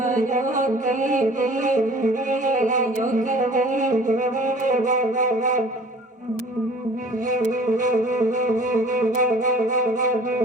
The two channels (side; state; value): both; normal; correlation 0.48